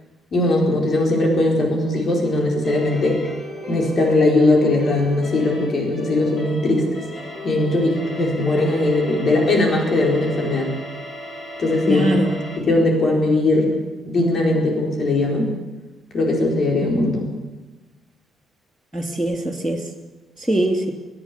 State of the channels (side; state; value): both; normal; correlation 0.74